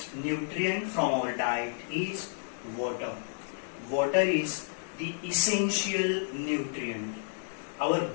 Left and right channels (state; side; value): silent; right; digital silence